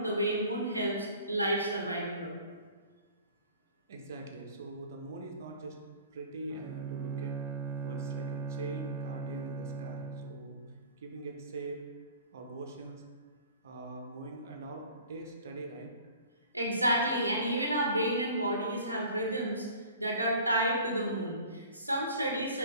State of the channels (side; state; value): both; inverted; correlation -0.46